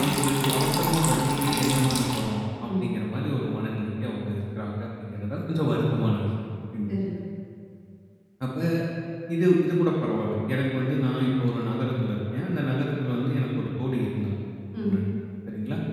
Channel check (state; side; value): identical; both; correlation 1.00